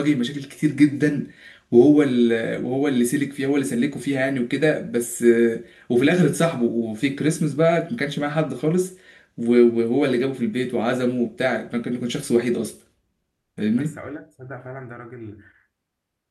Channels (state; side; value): identical; both; correlation 1.00